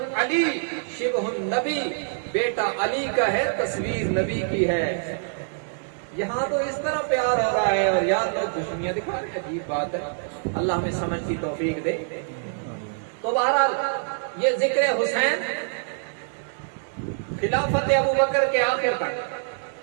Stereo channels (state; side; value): silent; left; digital silence